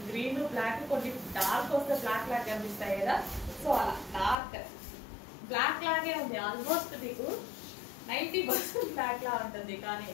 Green black కొన్ని డార్క్ వస్తే బ్లాక్ లాగా కనిపిస్తాయి కదా, సో అలా డార్క్ బ్లాక్ లాగే ఉంది. ఆల్మోస్ట్ మీకు 90% బ్లాక్ లా ఉంటుంది, కానీ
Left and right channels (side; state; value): right; drops out; at 4.4 s